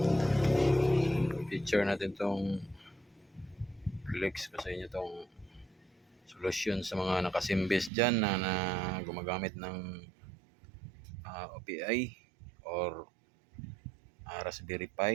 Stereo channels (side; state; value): left; drops out; at 7.9 s